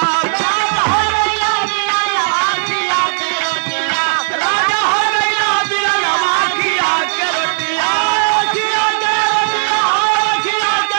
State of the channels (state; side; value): silent; left; digital silence